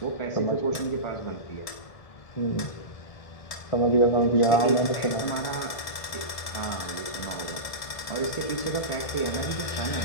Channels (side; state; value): right; late; 1.7 ms